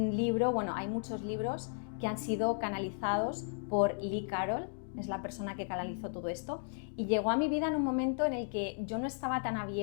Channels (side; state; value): right; silent; digital silence